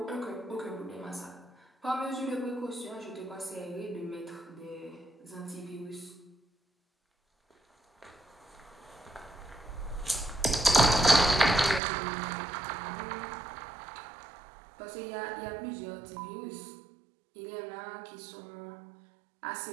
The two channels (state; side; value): drops out; left; at 11.8 s